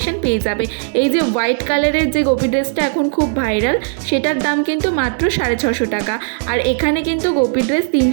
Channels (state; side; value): silent; left; 64 dB below the other